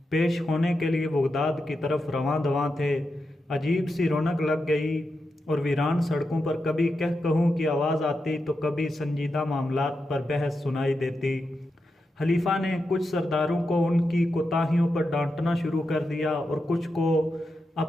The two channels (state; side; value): normal; both; correlation 0.87